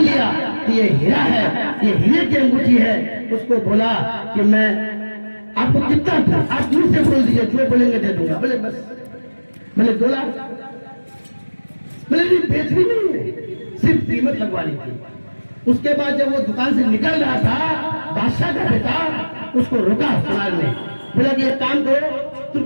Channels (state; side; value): inverted; both; correlation -1.00